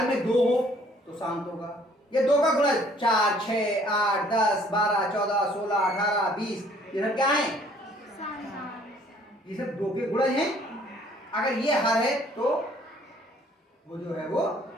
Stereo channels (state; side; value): normal; both; correlation 0.59